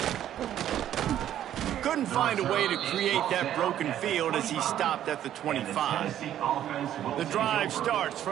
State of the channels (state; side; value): quieter; left; 11.3 dB